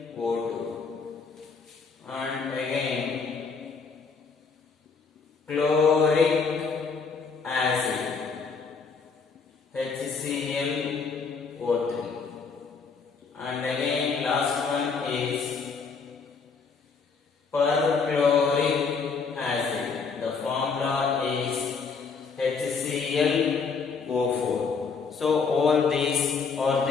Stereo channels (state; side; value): quieter; right; 5.1 dB